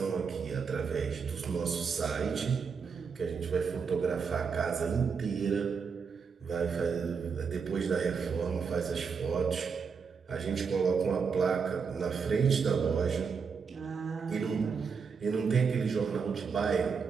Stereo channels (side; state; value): left; quieter; 5.8 dB